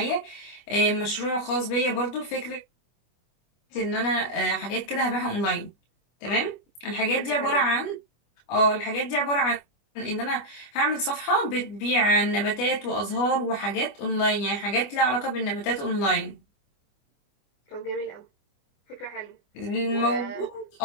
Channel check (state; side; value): late; right; 25 ms